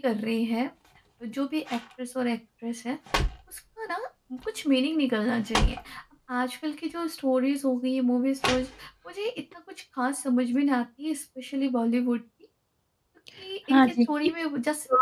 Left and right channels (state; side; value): identical; both; correlation 1.00